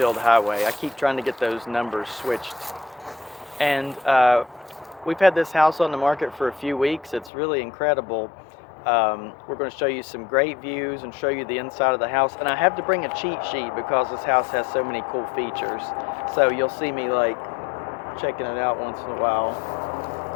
Highway. I keep trying to get those numbers switched. And we've had this house on the market for a few weeks. It's really incredible. We're going to show you some great views and show you the inside of the house. And I have to bring a cheat sheet because this house has so many cool features. So you'll see me like checking it out once in a while.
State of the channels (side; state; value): right; drops out; at 7.3 s